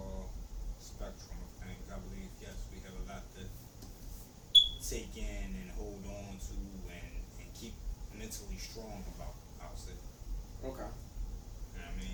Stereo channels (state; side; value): identical; both; correlation 1.00